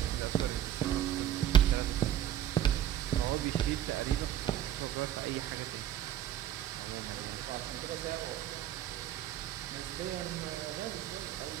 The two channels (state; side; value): quieter; left; 11.3 dB